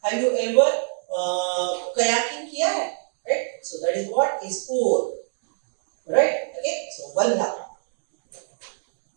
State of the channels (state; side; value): silent; left; digital silence